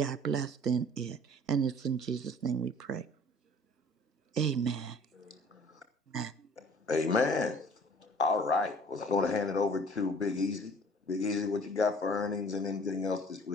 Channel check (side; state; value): both; normal; correlation 0.51